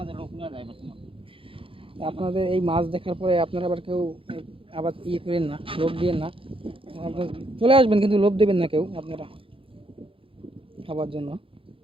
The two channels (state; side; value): late; left; 0.26 ms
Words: যায়, লোক না যায়। আপনাদের এই মাছ দেখার পরে আপনারা আবার কেউ আবার করেন না, লোভ দিয়েন না। আপনারা চলে আসবেন, কিন্তু লোভ দেবেন না কেউ আপনারা খাবার জন্য।